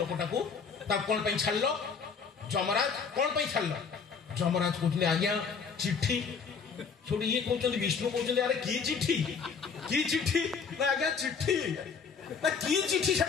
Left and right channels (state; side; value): quieter; right; 5.7 dB